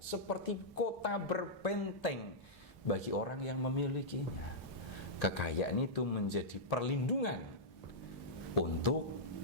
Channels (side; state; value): both; normal; correlation -0.11